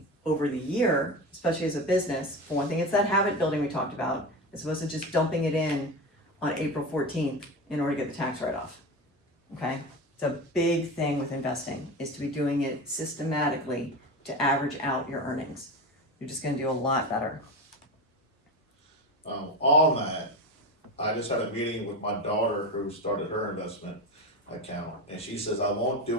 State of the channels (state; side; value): normal; both; correlation 0.24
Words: over the year, especially as a business. For one thing, it's that habit building we talked about, as opposed to just dumping it in on April 14th in order to get the tax write-off, okay? It's a big thing with investing, is to be doing it systematically to average out your earnings. You're just going to do a lot better. On that, I just had a meeting with my daughter who started her investment account, and she says, I won't